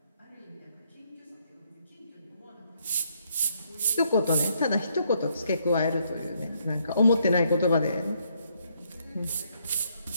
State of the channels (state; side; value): inverted; both; correlation -0.72